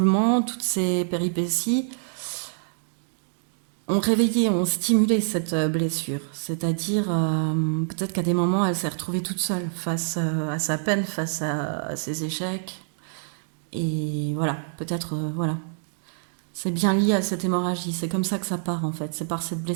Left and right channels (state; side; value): silent; left; digital silence